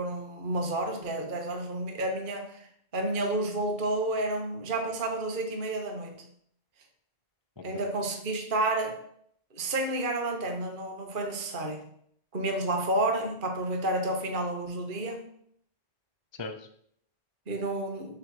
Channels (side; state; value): left; late; 2.4 ms